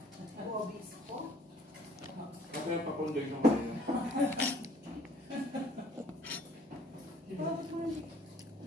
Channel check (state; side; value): normal; both; correlation 0.57